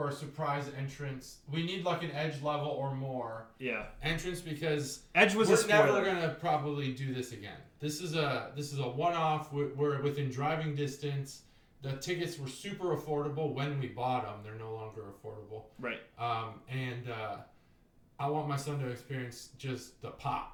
a surprise entrance. We need an Edge level or more entrance, because Edge was we're never gonna probably do this again. This is a one-off. We're within driving distance. The tickets were super affordable when we bought them. They're no longer affordable. Right. And I want my son to experience just the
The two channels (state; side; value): identical; both; correlation 1.00